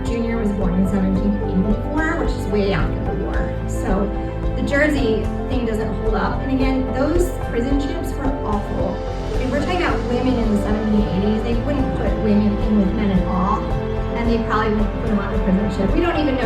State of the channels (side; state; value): both; identical; correlation 1.00